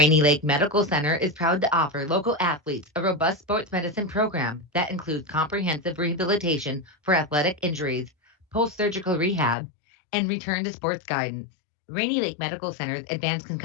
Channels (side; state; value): right; drops out; at 9.6 s